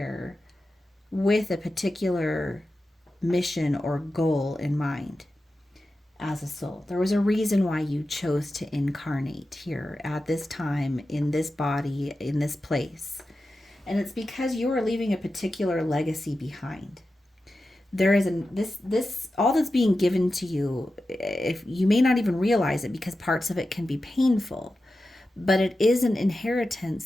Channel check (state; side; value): normal; both; correlation 0.92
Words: with a particular mission or goal in mind as a soul. There was a reason why you chose to incarnate here at this time, in this body, in this place. And it's because you are leaving a particular legacy behind. There is this all that's being given to you, if you may not even realize it, because parts of it can be painful, but it is an inheritance